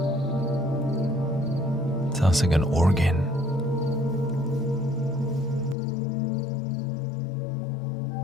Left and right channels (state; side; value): drops out; right; at 5.8 s